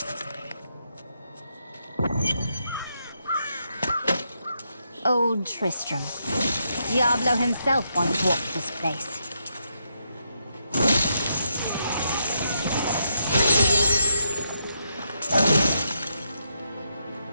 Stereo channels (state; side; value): inverted; both; correlation -0.81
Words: Old Tristram. Diablo himself once walked this place.